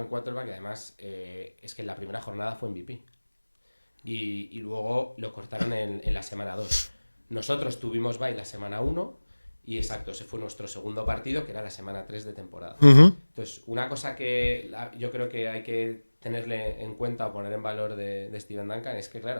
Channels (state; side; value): inverted; both; correlation -1.00